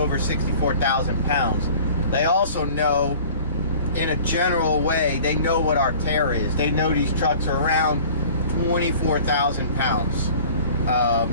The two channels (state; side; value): inverted; both; correlation -0.46